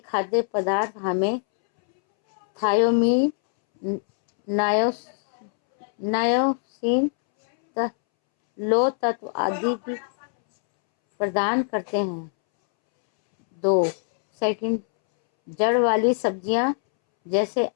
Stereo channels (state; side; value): silent; right; 63 dB below the other